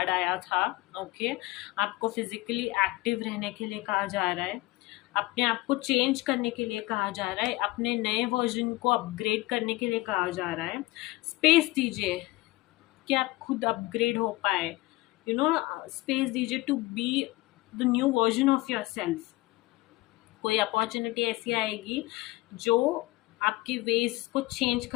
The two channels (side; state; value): right; quieter; 20.3 dB